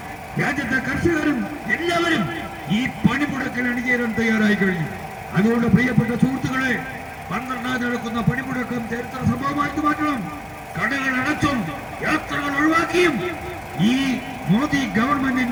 രാജ്യത്തെ കർഷകരും എല്ലാവരും ഈ പണിമുടക്കിൽ അണിചേരാൻ തയ്യാറായി കഴിഞ്ഞു. അതുകൊണ്ട് പ്രിയപ്പെട്ട സുഹൃത്തുക്കളെ, 12 നടക്കുന്ന പണിമുടക്കം ചരിത്ര സംഭവമാക്കി മാറ്റണം. കടകൾ അടച്ചും യാത്രകൾ ഒഴിവാക്കിയും ഈ മോദി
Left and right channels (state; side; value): identical; both; correlation 1.00